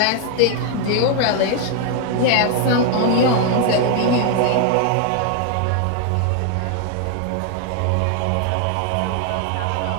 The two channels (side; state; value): both; different; correlation 0.00